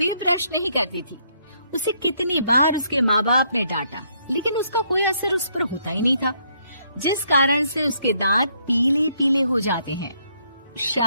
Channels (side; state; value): both; inverted; correlation -0.72